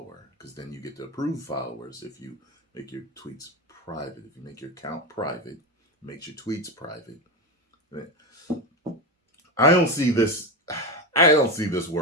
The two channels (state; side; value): normal; both; correlation 0.16